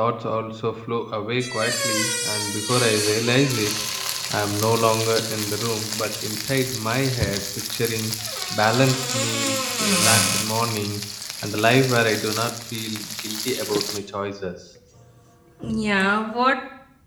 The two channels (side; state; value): both; identical; correlation 1.00